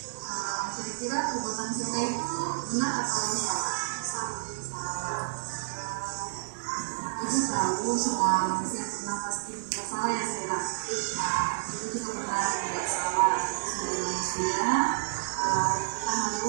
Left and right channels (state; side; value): silent; left; 58 dB below the other